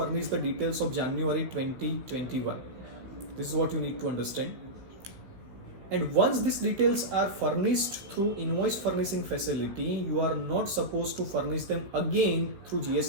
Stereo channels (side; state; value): left; late; 15 ms